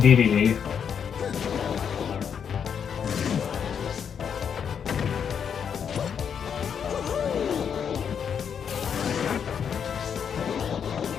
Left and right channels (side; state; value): right; quieter; 7.5 dB